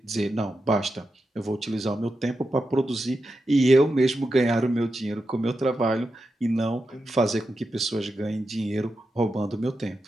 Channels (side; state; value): both; normal; correlation 0.89